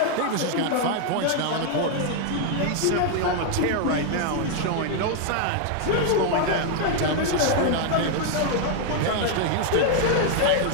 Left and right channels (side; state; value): both; different; correlation 0.00